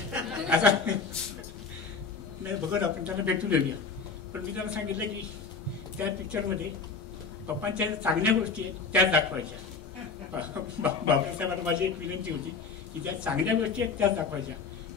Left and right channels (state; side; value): quieter; right; 5.1 dB